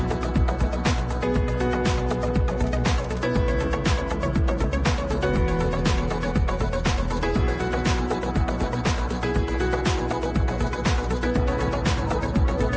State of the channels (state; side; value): identical; both; correlation 1.00